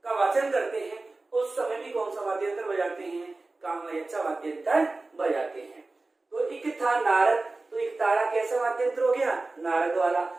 का वाचन करते हैं उस समय भी कौन सा वाद्य यंत्र बजाते हैं? कामायच्चा वाद्य यंत्र बजाते हैं। तो एक था नारद, तो एक तारा कैसा वाद्य यंत्र हो गया? नारद वाला।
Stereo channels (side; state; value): left; quieter; 3.3 dB